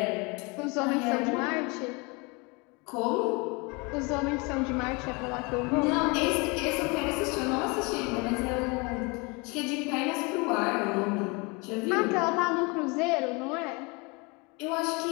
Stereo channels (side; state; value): right; quieter; 28.6 dB